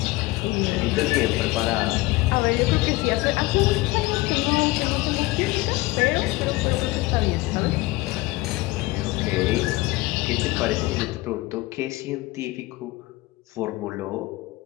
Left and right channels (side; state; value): right; quieter; 20.2 dB